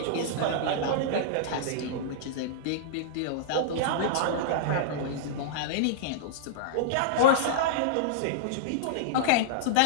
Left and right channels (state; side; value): different; both; correlation -0.02